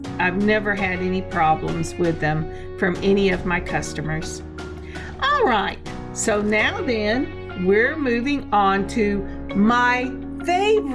never had any problems with them from any of my customers. All right, so now then we're moving on to my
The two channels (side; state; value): both; identical; correlation 1.00